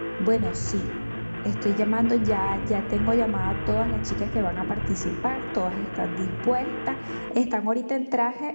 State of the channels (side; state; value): both; inverted; correlation -1.00